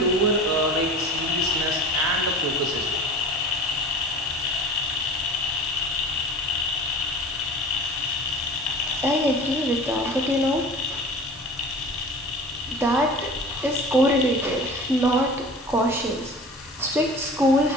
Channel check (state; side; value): normal; both; correlation 0.39